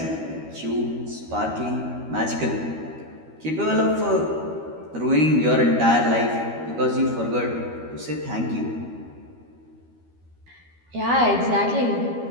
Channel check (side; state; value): left; late; 13 ms